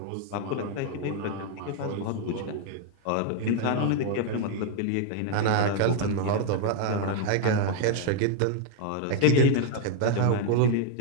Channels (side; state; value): both; different; correlation 0.00